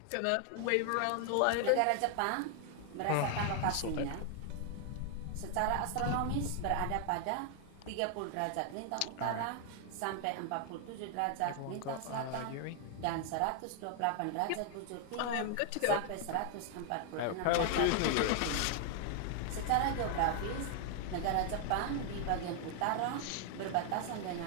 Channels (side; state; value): both; different; correlation 0.00